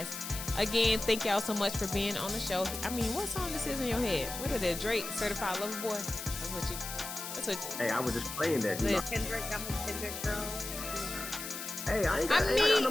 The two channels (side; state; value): left; noise; hiss, 7 dB below the sound